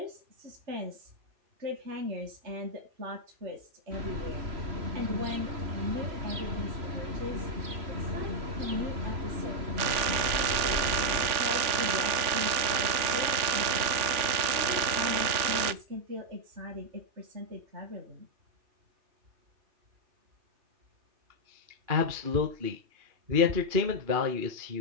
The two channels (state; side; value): late; left; 3.4 ms